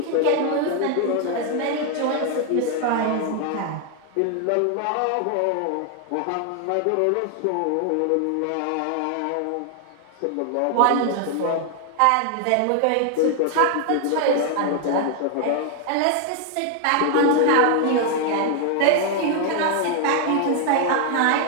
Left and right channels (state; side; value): different; both; correlation 0.00